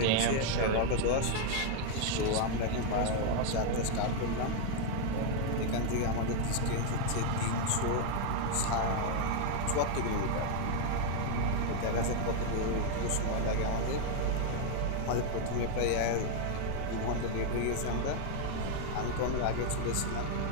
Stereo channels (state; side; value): different; both; correlation 0.01